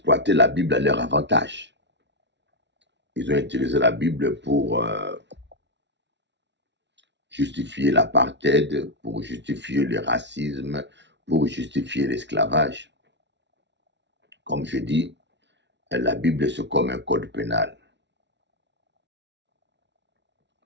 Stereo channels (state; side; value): late; left; 0.51 ms